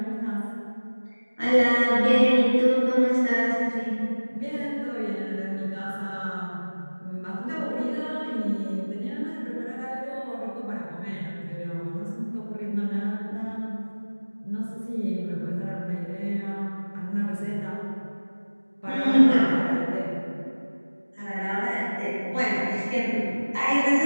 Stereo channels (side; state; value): both; inverted; correlation -1.00